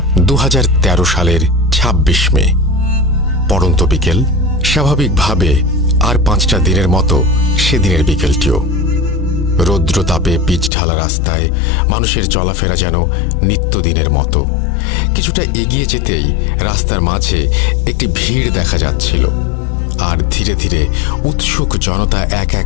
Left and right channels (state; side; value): drops out; right; at 10.7 s